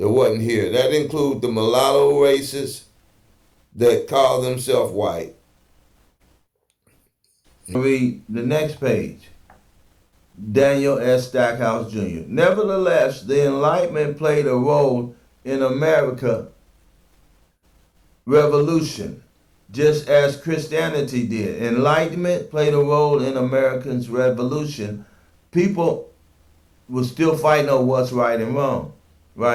wasn't here. That includes the mulatto races that call themselves white. Read the next page. Daniel S. Stackhouse Jr. Nevertheless, the Enlightenment played a role in America Revolution, just as Christianity did. Enlightenment played a role in Americans' revolution. People were still fighting over what's right and wrong,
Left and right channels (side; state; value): both; identical; correlation 1.00